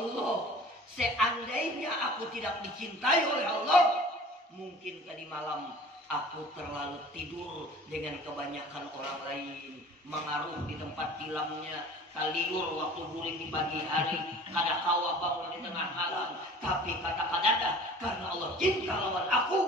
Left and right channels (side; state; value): both; normal; correlation 0.45